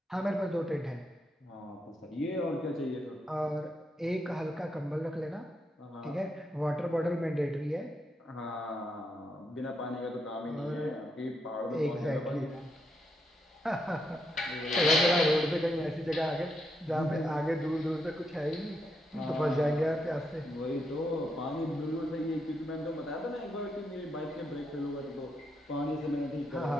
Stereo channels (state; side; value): normal; both; correlation 0.80